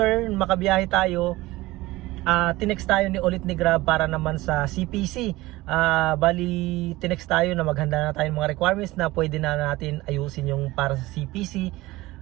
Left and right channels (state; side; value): quieter; left; 19.0 dB